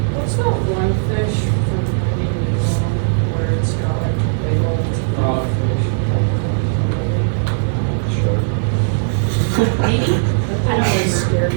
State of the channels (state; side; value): silent; left; 68 dB below the other